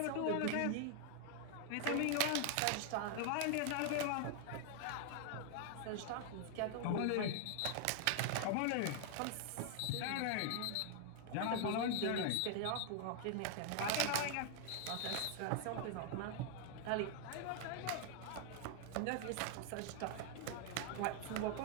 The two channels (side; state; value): both; different; correlation 0.00